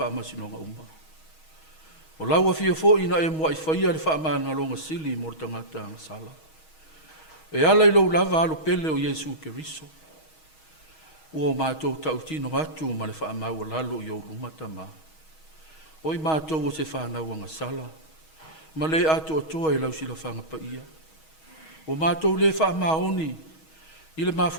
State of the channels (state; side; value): late; right; 6.3 ms